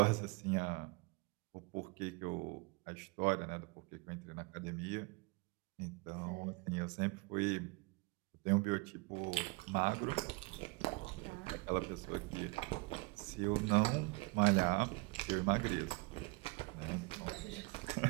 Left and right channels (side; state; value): left; quieter; 27.2 dB